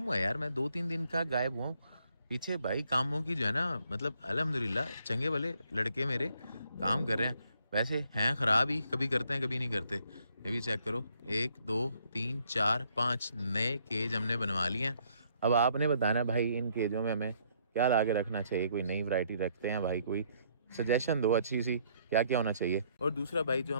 हुआ है यार, मैं 2, 3 दिन का गायब हुआ हूँ। पीछे भाई कामों की जो है ना मतलब अल्हम्दुलिल्लाह चंगे वाले लड़के मेरे काम कर रहे हैं। वैसे हैं ख़राब ही, कभी करते हैं कभी नहीं करते। ये भी चेक करो, 1, 2, 3, 4, 5 नए केज हमने बनवा लिए हैं। अब आपने बताना भाई इन केजों में हमें क्या ला के रखना चाहिए। कोई नई वैरायटी रखते हैं भाई, कोई सजेशन दो अच्छी सी, क्या क्या होना चाहिए। और दूसरा भाई जो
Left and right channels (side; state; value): both; inverted; correlation -0.68